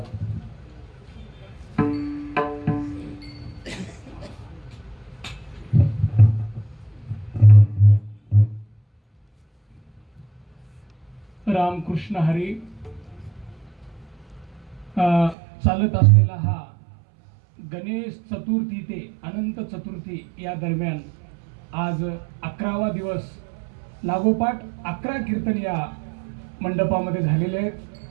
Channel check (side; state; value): left; drops out; at 15.4 s